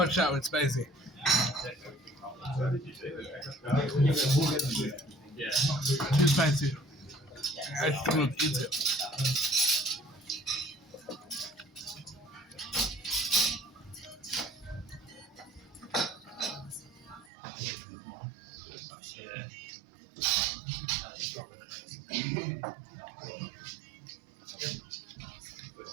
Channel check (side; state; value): left; drops out; at 17.3 s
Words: out, it's spicy. Yeah. Too spicy. I still not eat it. Yeah.